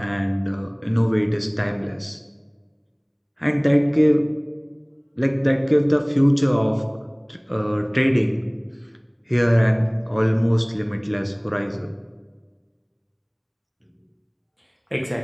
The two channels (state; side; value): identical; both; correlation 1.00